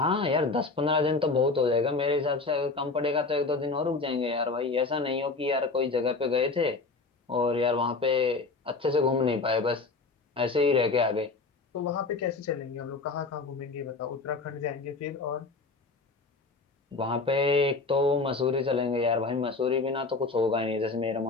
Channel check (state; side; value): quieter; right; 3.9 dB